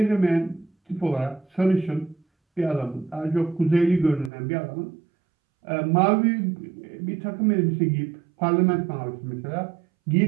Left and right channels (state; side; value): drops out; left; at 4.3 s